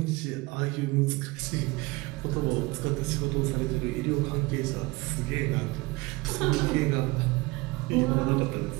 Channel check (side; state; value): left; quieter; 23.4 dB